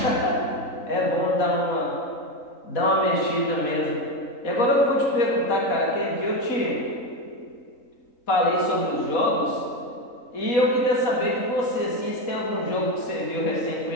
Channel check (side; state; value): right; late; 3.8 ms